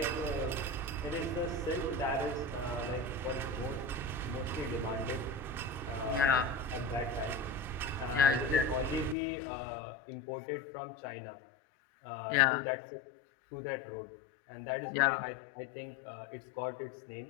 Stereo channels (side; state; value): right; drops out; at 9.2 s